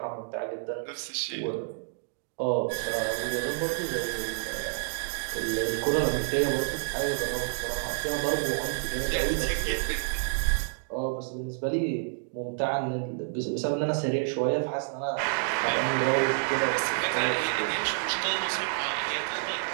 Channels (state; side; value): silent; left; digital silence